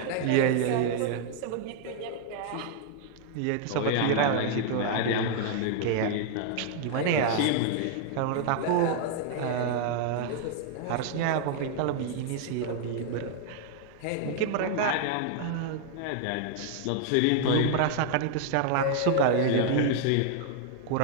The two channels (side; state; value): both; different; correlation 0.00